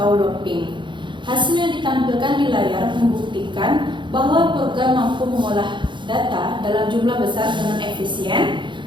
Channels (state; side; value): late; left; 0.23 ms